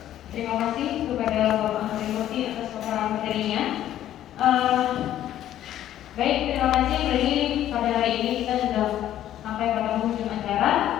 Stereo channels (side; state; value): right; quieter; 12.1 dB